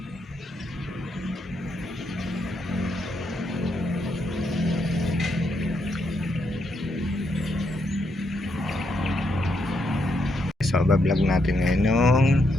So bablog natin ngayon yung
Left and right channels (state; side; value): normal; both; correlation 0.78